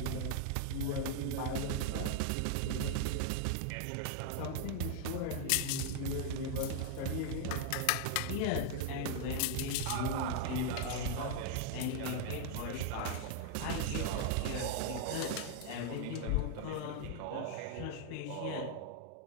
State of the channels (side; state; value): both; different; correlation 0.00